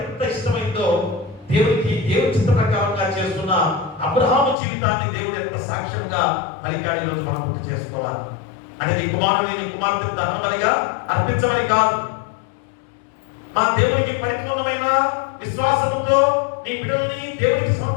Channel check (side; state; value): right; drops out; at 4.5 s